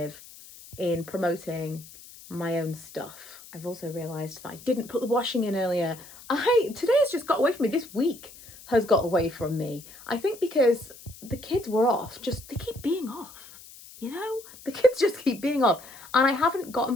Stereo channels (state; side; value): noise; left; hiss, 19 dB below the sound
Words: in promoting my own stuff. I've also realised that I didn't put the washing in earlier. Today has just got away from me. This week has got away from me. I think because the kids were off. They keep being off, you know? The kids just keep being off. And I haven't gotten